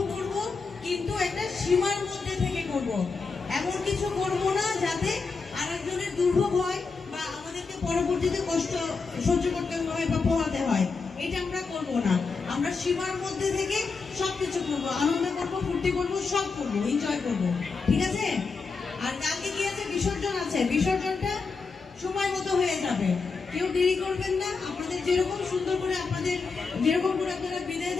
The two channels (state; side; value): quieter; right; 4.6 dB